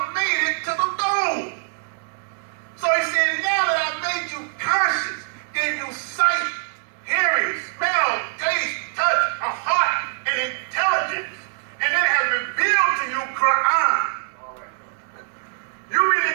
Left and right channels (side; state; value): left; silent; digital silence